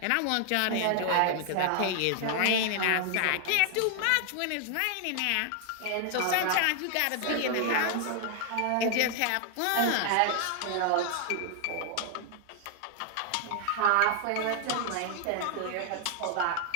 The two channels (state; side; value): different; both; correlation 0.00